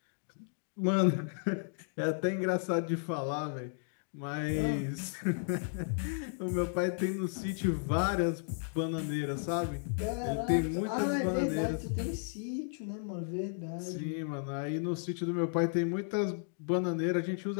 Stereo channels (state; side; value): silent; right; digital silence